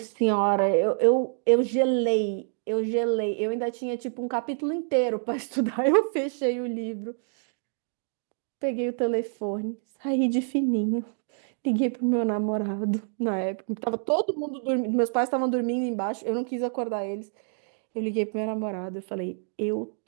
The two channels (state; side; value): silent; left; digital silence